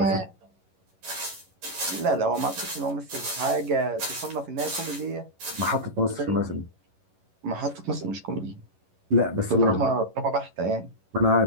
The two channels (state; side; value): late; left; 11 ms